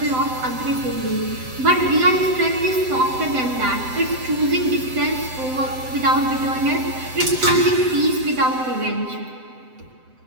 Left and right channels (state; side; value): late; left; 7.8 ms